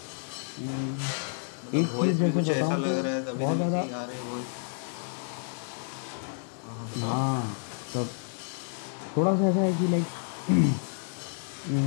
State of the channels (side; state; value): right; silent; 58 dB below the other